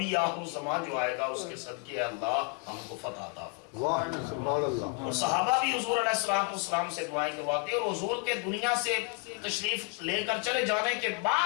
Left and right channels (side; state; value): right; quieter; 33.4 dB